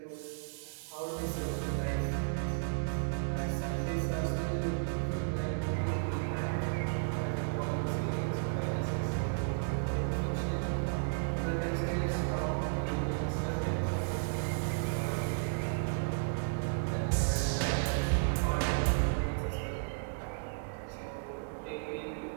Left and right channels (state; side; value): silent; left; digital silence